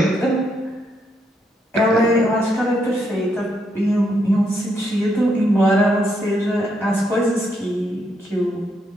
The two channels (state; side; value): normal; both; correlation 0.77